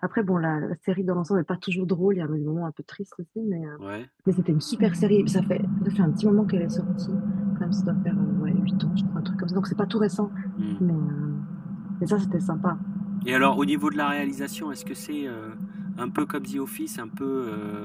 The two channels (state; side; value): identical; both; correlation 1.00